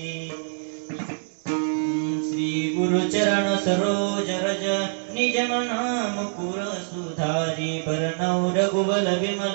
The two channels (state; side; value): silent; left; digital silence